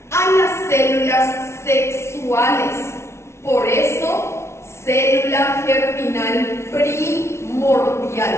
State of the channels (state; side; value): late; right; 0.13 ms